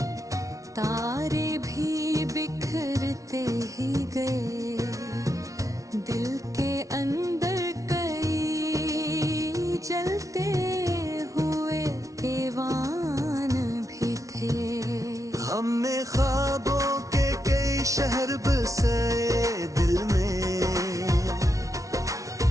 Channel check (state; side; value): late; left; 0.16 ms